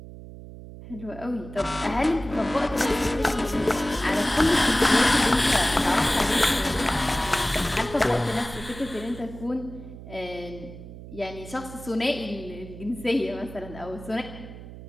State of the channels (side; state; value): right; noise; hum, 14 dB below the sound